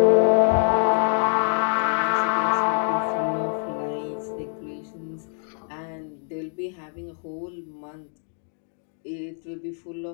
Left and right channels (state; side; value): silent; right; 59 dB below the other